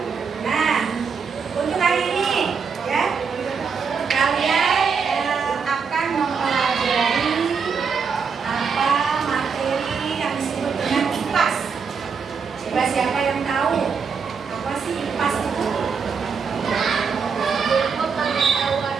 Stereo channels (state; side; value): quieter; left; 5.8 dB